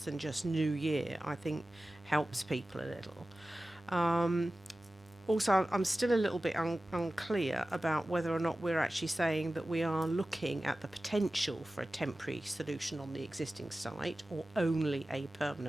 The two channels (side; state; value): both; normal; correlation 0.96